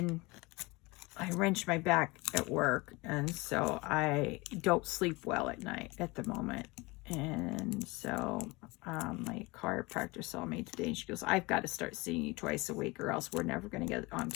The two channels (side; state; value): right; quieter; 24.1 dB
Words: wrenched my back at work, and so I don't sleep well at night at the moment. And so my chiropractor saw me today, and she goes, I've got to start seeing you twice a week, or else we're never going to get on